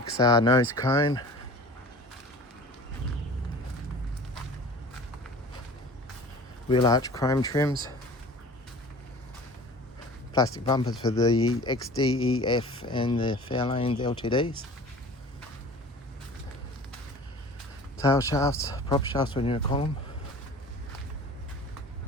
nose cone, wheel arch chrome trims, plastic bumpers for the XD, EF and the Fairlane LTDs, tail shafts, prop shafts when you call them,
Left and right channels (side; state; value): both; normal; correlation 0.42